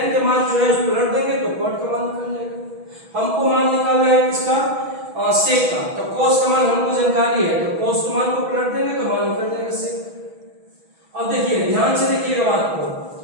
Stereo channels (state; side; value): late; left; 6.2 ms